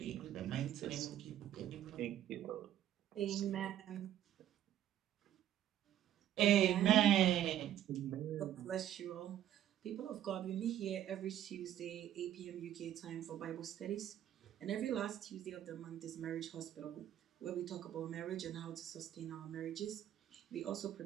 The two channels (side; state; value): left; quieter; 11.5 dB